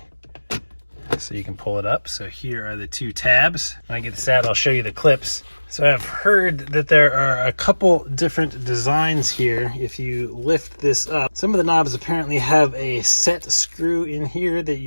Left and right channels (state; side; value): inverted; both; correlation -1.00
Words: so you can pull it up. So here are the 2 tabs. When I get this out, I'll show you the clips. So I've heard that there are a couple different designs here. If you lift this up, some of the knobs apparently have a set screw in here that